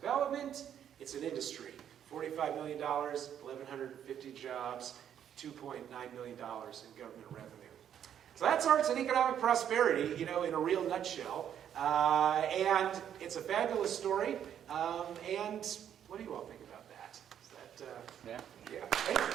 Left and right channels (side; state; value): left; quieter; 9.5 dB